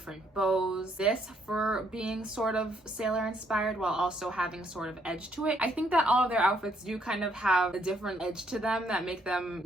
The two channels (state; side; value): normal; both; correlation 0.70